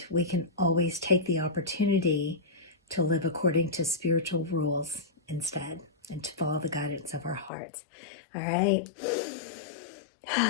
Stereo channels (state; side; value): drops out; right; at 7.5 s